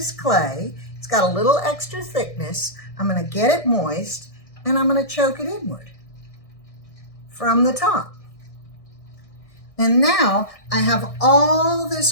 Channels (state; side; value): late; right; 1.6 ms